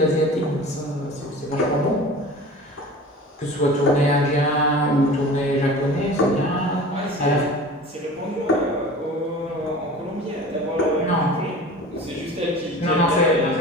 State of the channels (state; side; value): normal; both; correlation 0.39